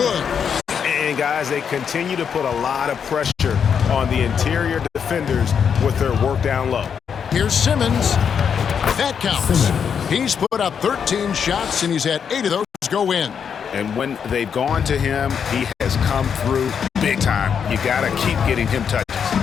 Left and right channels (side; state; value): right; quieter; 7.2 dB